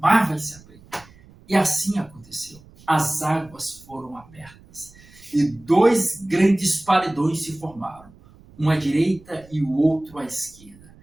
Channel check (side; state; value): right; noise; rumble, 25 dB below the sound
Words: vai se abrir. E assim aconteceu. As águas foram abertas e dois grandes paredões se formaram, um à direita e o outro à esquerda.